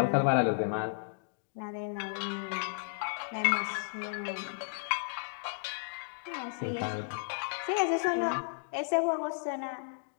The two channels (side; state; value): right; silent; digital silence